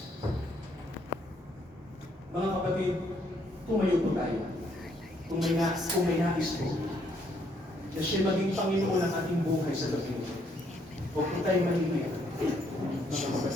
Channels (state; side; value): normal; both; correlation 0.70